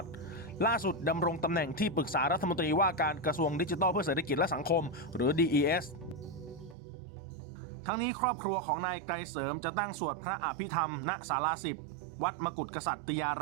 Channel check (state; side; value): drops out; left; at 6.8 s